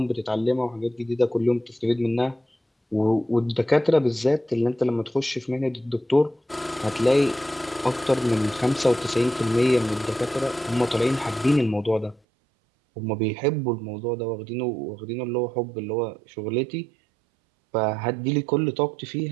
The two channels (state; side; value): drops out; left; at 12.2 s